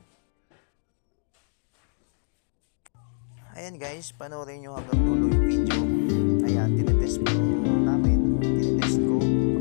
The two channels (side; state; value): right; silent; digital silence